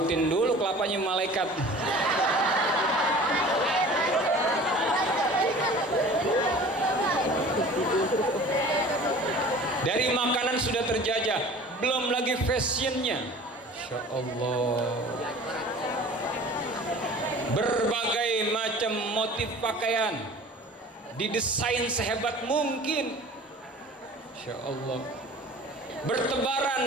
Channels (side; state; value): both; normal; correlation 0.43